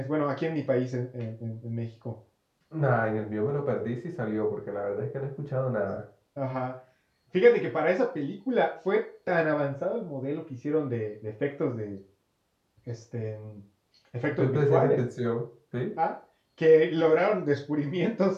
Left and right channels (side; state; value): both; identical; correlation 1.00